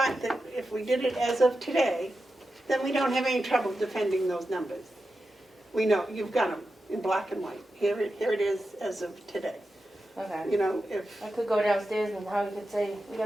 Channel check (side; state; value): both; normal; correlation 0.90